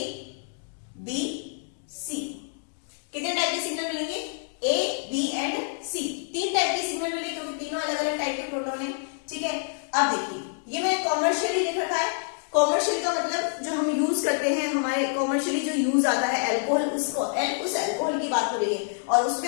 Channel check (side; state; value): right; silent; digital silence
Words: B C, कितने टाइप के सिग्नल मिलेंगे, A B and C, 3 type के सिग्नल मिलेंगे, क्योंकि तीनों अलग अलग टाइप के प्रोटॉन है, ठीक है। अब देखिए ये मैंने कॉमर्शियली लिख रखा है, कॉमर्शियल का मतलब जो हम यूज करते हैं, हमारे कॉमर्शियली जो यूज आता है अल्कोहल, उस अल्कोहल की बात हो रही है, और